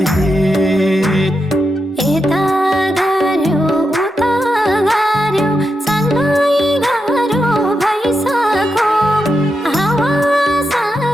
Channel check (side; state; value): both; normal; correlation 0.86